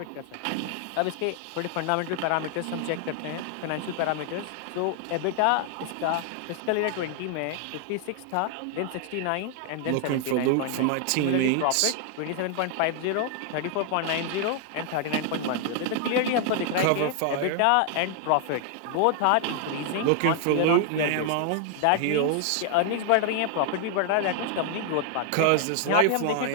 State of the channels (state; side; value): different; both; correlation 0.00